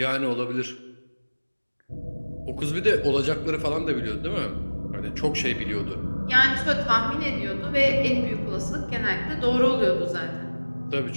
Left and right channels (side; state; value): both; inverted; correlation -1.00